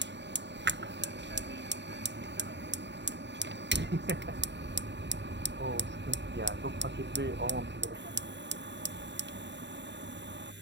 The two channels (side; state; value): left; late; 0.52 ms